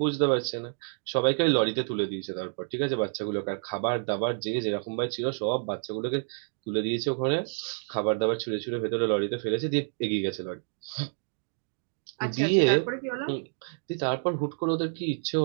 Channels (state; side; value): silent; left; 59 dB below the other